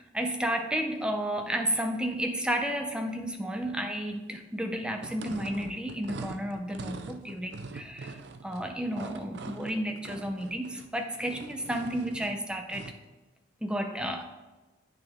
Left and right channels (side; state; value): both; normal; correlation 0.60